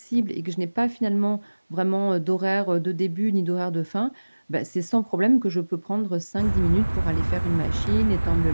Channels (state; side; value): inverted; both; correlation -1.00